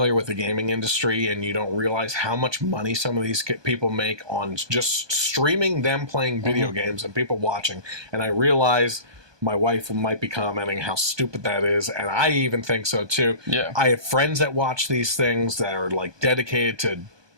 with the gaming industry and you don't realize how much money some of these people make on just streaming them playing video games and people watching, and I realize my wife might be commenting how stupid that is, and I even think so too. Yeah. I have friends that watch these things that are dedicated to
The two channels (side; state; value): left; late; 1.2 ms